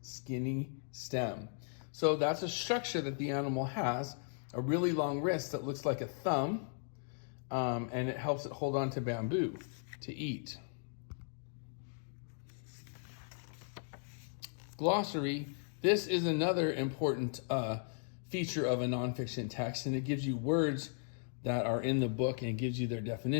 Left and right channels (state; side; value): silent; right; digital silence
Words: skinny stem. So that's a structure that the animal has, a really long wrist that looks like a thumb, and it helps it hold on to bamboo to eat. Glossary. This is another important feature of a nonfiction text, and it gives you words that are in the book and gives you their